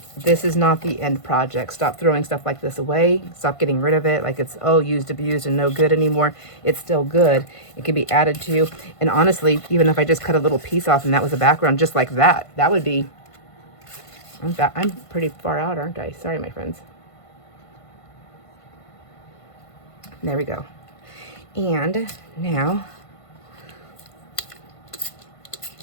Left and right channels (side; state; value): right; late; 1.5 ms